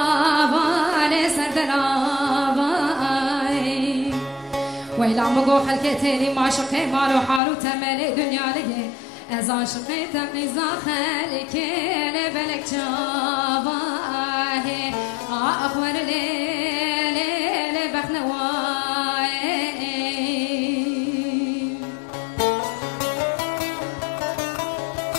لسردن آبا ویلا مگو خلکتی لی ماشقی مالو حالو تملی دنیا لگه از عاشقی تقیزا خلک لبلک جواه آخور لیل بخنوای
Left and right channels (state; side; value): drops out; right; at 7.4 s